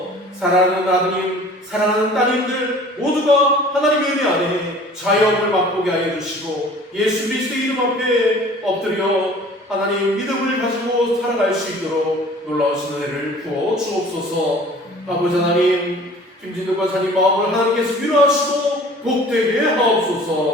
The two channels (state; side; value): normal; both; correlation 0.47